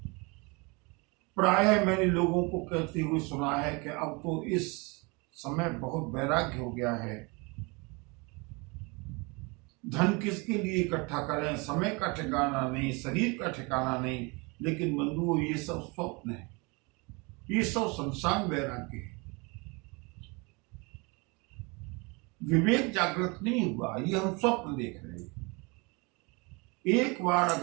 प्रायः मैंने लोगों को कहते हुए सुना है कि अब तो इस समय बहुत वैराग्य हो गया है। धन किसके लिए इकट्ठा करें, समय का ठिकाना नहीं, शरीर का ठिकाना नहीं। लेकिन बंधुओं ये सब स्वप्न है, ये सब संसार वैराग्य है। विवेक जागृत नहीं हुआ, ये हम स्वप्न देख रहे हैं। एक बार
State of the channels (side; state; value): left; quieter; 28.6 dB